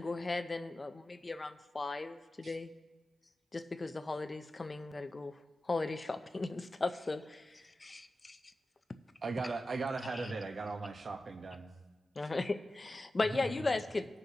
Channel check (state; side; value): normal; both; correlation 0.94